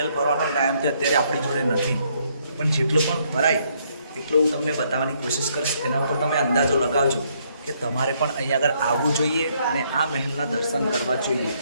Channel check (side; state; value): both; inverted; correlation -0.70